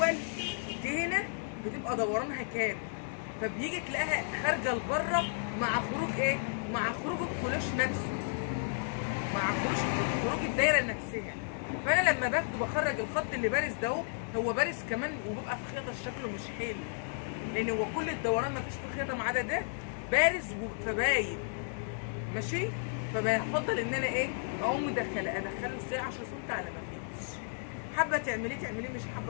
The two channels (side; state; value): right; silent; digital silence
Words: دي هنا بتبقى دورانها كام، فبيجي تلاقيها خارجه لبره مع خروج ايه؟ مع خروج الكلاش نفسه، مع خروج الدايره نفسها. فانا لما باخده بخرج الخط اللي بارز ده هو بارز كمان، وبيبقى في خياطه شكله مش حلو، لان هو كل الدوران مفيش في خياطه ما عدا ده بارز فباين ماشي. فبفضل ان انا ايه اقوم ادخله ازاي 10 سم على ما فيش. حابه تعمليه مش